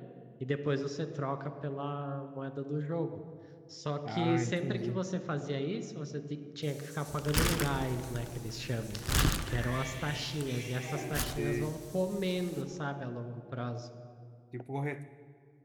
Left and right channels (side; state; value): both; identical; correlation 1.00